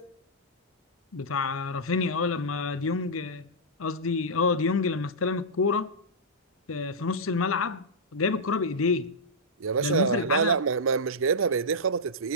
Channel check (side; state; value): both; normal; correlation -0.11